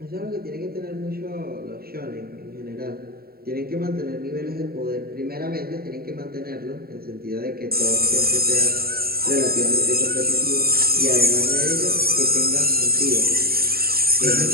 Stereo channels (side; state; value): left; late; 0.44 ms